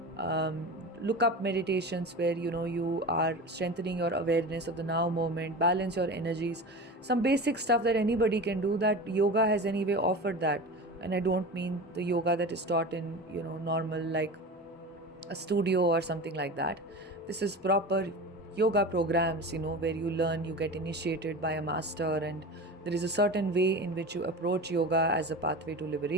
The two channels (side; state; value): both; normal; correlation 0.30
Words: Look up meditations where you are strengthening your awareness of the now moment, balance your energies, some basic stuff that anybody can do. That yoga has anyway offered that, and I don't mean the yoga that is taught in normal, like a studio or something like that. This is proper yoga programs, where you learn, you get initiated by a master, and there is a certain way in which you approach yoga as a pathway to